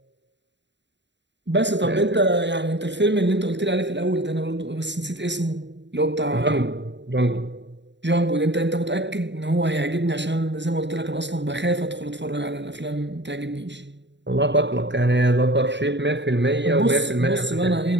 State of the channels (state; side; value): late; left; 0.52 ms